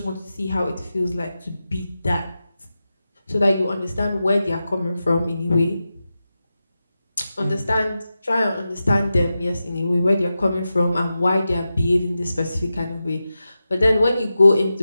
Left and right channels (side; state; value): both; inverted; correlation -0.92